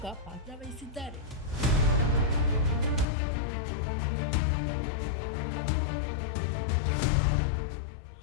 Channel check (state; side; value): drops out; right; at 3.1 s